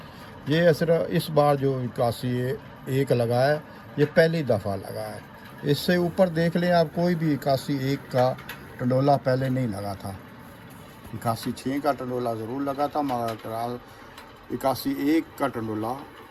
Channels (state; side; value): identical; both; correlation 1.00